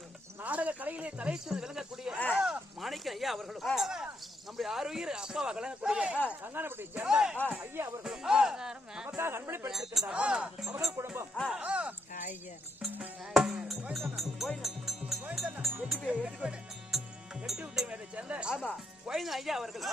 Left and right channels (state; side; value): normal; both; correlation 0.79